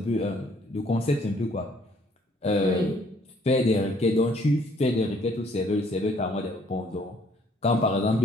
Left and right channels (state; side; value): normal; both; correlation 0.63